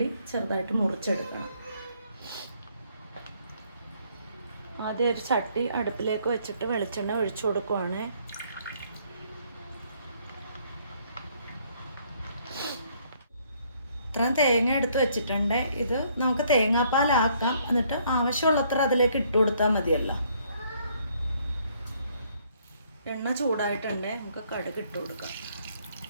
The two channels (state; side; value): inverted; both; correlation -0.66